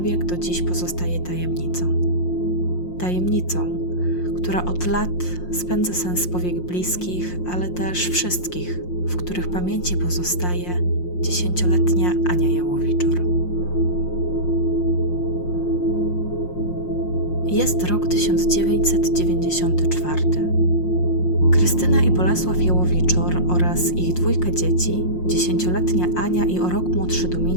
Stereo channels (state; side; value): late; right; 5.6 ms